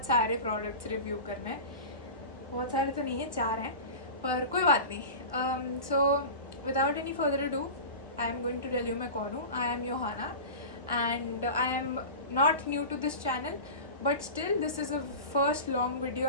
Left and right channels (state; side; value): inverted; both; correlation -0.31